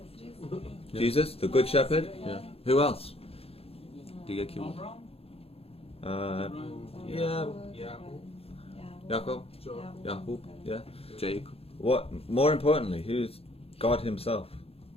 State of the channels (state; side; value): late; right; 0.28 ms